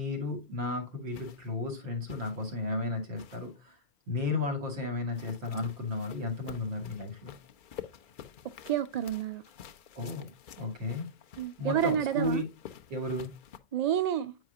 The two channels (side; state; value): right; late; 2.3 ms